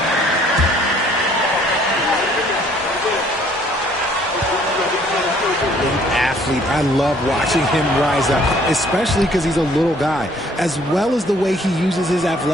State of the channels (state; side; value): normal; both; correlation 0.60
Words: I love watching him rise up, especially because he's a little guy, as well as the way he uses his